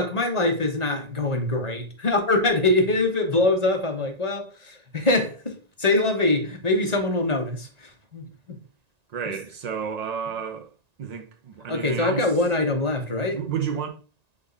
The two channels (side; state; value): left; late; 1.9 ms